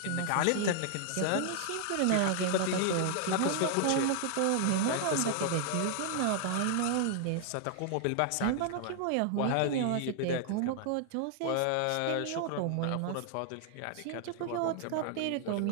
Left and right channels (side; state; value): both; different; correlation 0.00